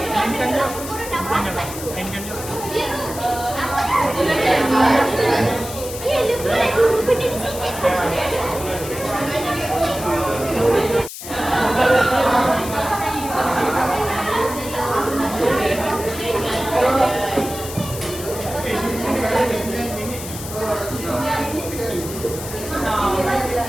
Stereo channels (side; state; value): left; noise; hiss, 10 dB below the sound